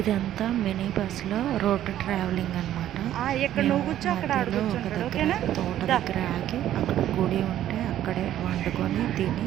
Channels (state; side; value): quieter; left; 12.1 dB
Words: మినీ బస్సులో రోడ్డు ట్రావెలింగ్ అనమాట. మధ్యలో ఒక దగ్గర తోట దగ్గర ఆగి అక్కడ గుడి ఉంటే అక్కడే వండుకొని